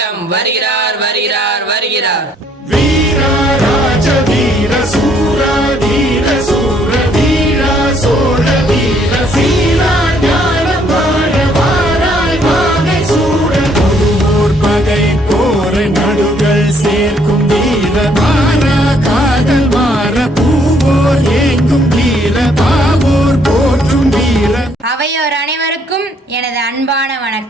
வருகிறார் வருகிறார் வருகிறார். வீரா ராஜ வீர சூரா வீர சூர வீரா சோழ வீர சீரா ஞானம் வாழ வாராய் வாகை சூட ஒருவோர் பகை போர நடுகள் சேர்க்கும் வீர மாறா காதல் மாற பூவோர் ஏங்கும் வீர பாவோர் போற்றும் வீர. அவையோர் அனைவருக்கும் எனது அன்பான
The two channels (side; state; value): both; normal; correlation 0.66